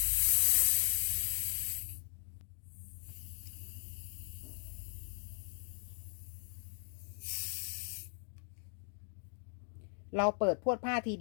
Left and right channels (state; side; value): silent; right; digital silence